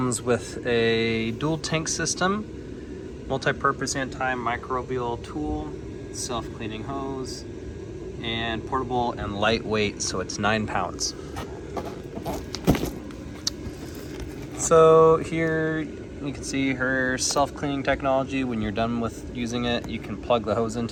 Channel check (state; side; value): identical; both; correlation 1.00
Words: with a dual tank system, multi-purpose antimicrobial tool, self-cleaning hose, and portable and lightweight, so it's 9 pounds. So here you can see her self-cleaning technology. When you're done with using it, you can plug the hose